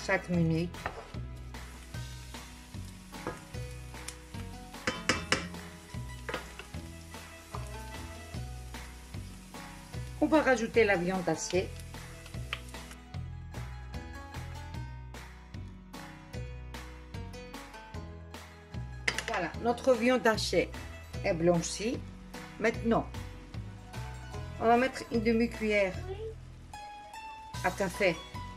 minutes. On va rajouter la viande hachée. Voilà, notre viande hachée est blanchie. Maintenant, on va mettre une demi-cuillère à café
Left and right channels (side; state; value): both; identical; correlation 1.00